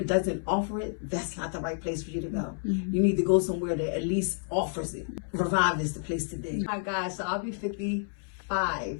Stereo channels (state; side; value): silent; right; 58 dB below the other